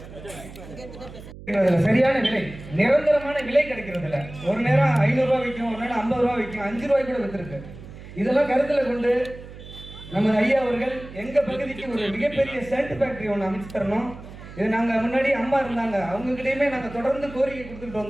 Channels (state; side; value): noise; right; hum, 15 dB below the sound